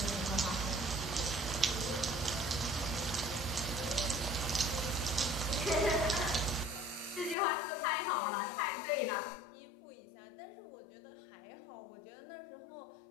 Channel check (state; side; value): drops out; right; at 7.4 s